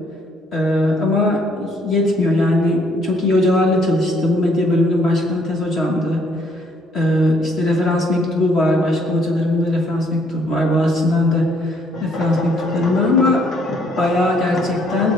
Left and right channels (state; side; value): normal; both; correlation 0.66